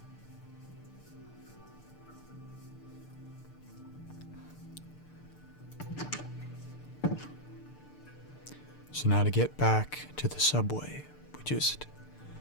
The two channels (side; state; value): right; late; 6.7 ms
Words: So now to get back to the subway, we just